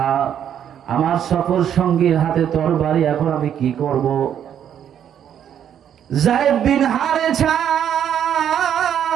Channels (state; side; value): quieter; left; 9.4 dB